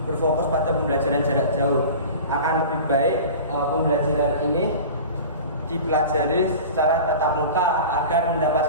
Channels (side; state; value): both; inverted; correlation -0.36